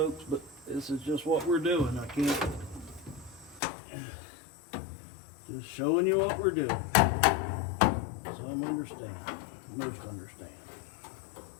but this is just what we're doing. I can't. Just showing you what we're doing. Some understand, most understand.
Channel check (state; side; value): drops out; right; at 3.6 s